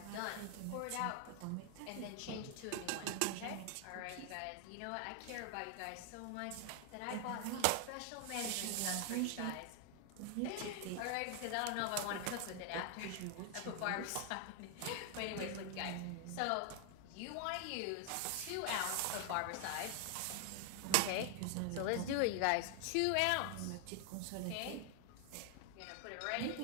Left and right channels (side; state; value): both; different; correlation 0.00